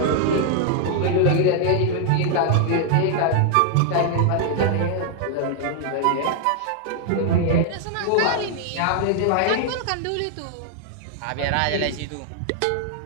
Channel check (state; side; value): different; both; correlation 0.00